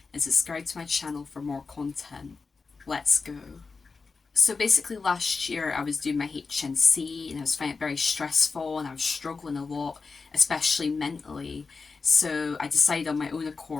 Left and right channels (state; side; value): quieter; right; 4.5 dB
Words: and subscribe to my channel for more content. Let's go. So basically last year I was doing my HNC and I was finding it very stressful and I was struggling a lot, especially mentally. So I decided on my own